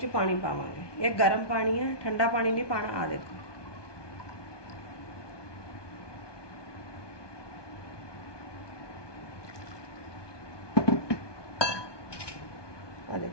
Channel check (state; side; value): late; right; 1.2 ms